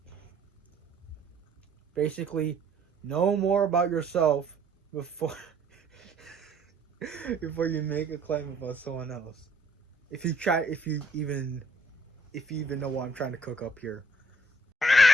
Basically, know more about yourself before before you make a claim about someone else. If you even know what I'm trying to cook up here.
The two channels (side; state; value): both; normal; correlation 0.63